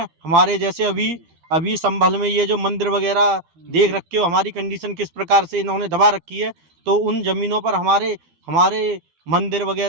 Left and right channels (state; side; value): late; left; 13 ms